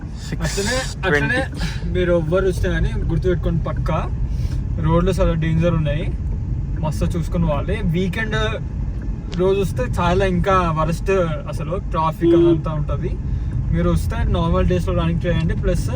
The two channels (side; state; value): both; identical; correlation 1.00